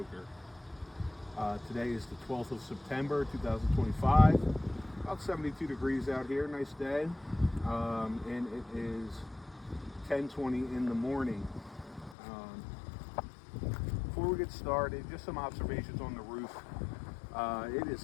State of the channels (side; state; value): right; drops out; at 12.2 s